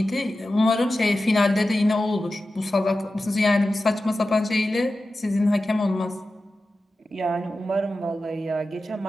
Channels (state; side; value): normal; both; correlation 0.93